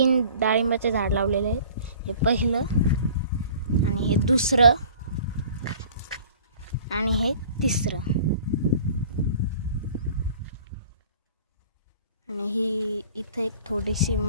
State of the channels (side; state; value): both; inverted; correlation -0.48